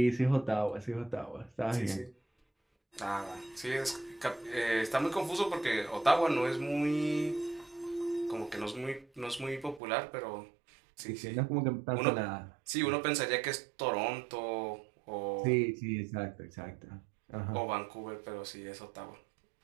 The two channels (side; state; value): left; drops out; at 9.8 s